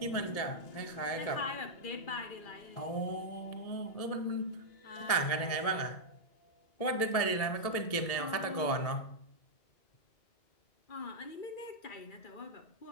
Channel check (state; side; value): late; right; 1.7 ms